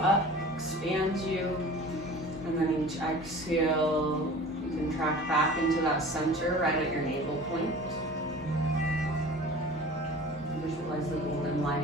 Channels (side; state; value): both; normal; correlation 0.41